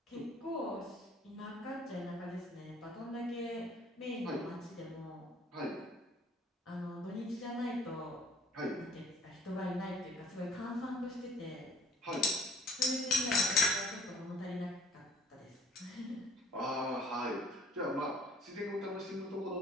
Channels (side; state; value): both; normal; correlation 0.53